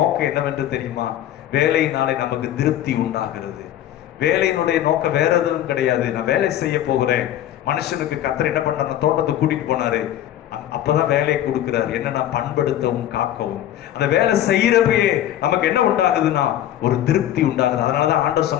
என்னவென்று தெரியுமா? வேலையினாலே நமக்கு திருப்தி உண்டாகிறது. வேலையினுடைய நோக்கம் வேற எதுவும் கிடையாது. நான் வேலை செய்ய போகிறேன். மனுஷனுக்கு கர்த்தர் என்ன பண்றாரு, தோட்டத்துக்கு கூட்டிட்டு போனாரு. அப்பதான் வேலையை கொடுக்கிறார். என்னன்னா, பண்படுத்தவும் காக்கவும். அந்த வேலை செய்யறப்பயே நமக்கு என்ன உண்டாகுதுன்னா, ஒரு திருப்தி உண்டாகுது. அதனாலதான் ஆண்டவர்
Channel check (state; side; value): quieter; right; 12.0 dB